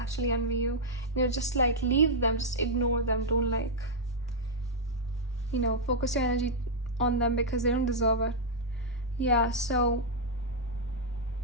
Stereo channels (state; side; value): normal; both; correlation -0.05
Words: envy you. Just like leave them, just ignore them. Don't like, focus your energy on them because they don't deserve it. Yeah, so